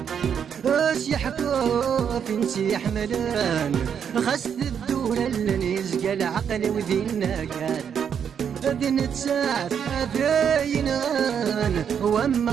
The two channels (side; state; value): left; quieter; 7.8 dB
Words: يحكوا فين يحملان خاصة الدولة اللي يزقى العقل وذينا كان ذن تساعد ذاين غان وما